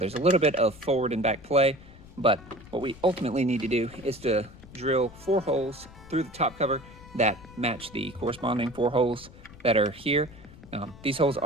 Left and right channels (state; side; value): noise; left; rumble, 20 dB below the sound